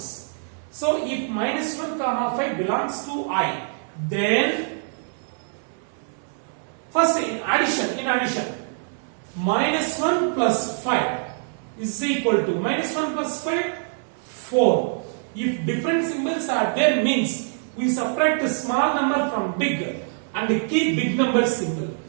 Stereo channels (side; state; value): left; silent; digital silence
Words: So if minus 1 comma 5 belongs to I, then first in addition, minus 1 plus 5 is equal to minus 1 plus 5, 4. If different symbols are there means we subtract a small number from big and keep big number symbol.